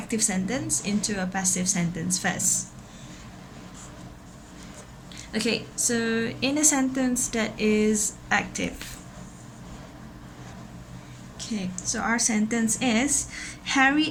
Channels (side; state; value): both; identical; correlation 1.00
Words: sentence into a passive sentence first. Okay, so in a sentence that is active. Okay, so our sentence is Harry